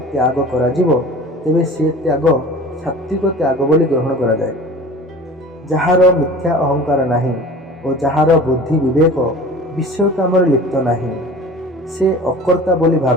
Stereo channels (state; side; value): normal; both; correlation 0.41